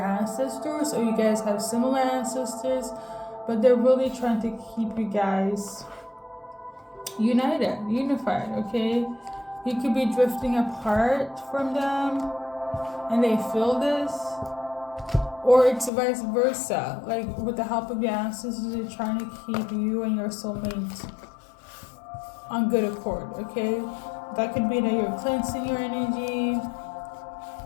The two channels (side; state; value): right; drops out; at 15.9 s